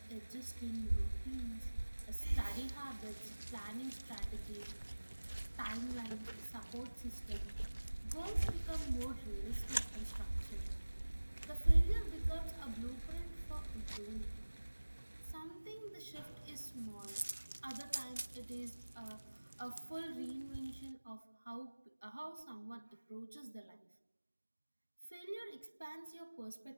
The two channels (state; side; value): inverted; both; correlation -1.00